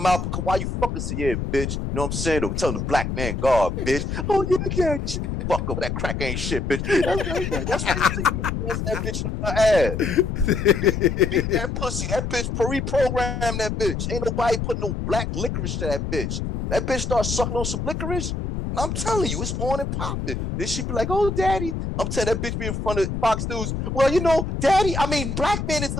because why you fucking say, yeah, bitch. You know what I'm saying? Or telling the black man, God, bitch. Oh, yeah, fuck up. That crack ain't shit, bitch. That's what you see. That bitch in her ass. Beat that pussy. That bitch reprogram that bitch. Ain't nobody putting no black licorice to that bitch. That bitch start sucking on some licorice. And I'm telling you, it's on and popping. Then she be like, oh, daddy. I'm telling that bitch be in front of Fox News. Well, you know, black man is the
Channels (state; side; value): noise; left; rumble, 3 dB below the sound